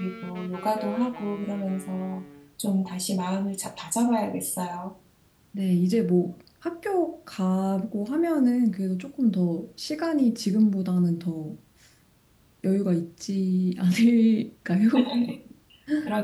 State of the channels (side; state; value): both; identical; correlation 1.00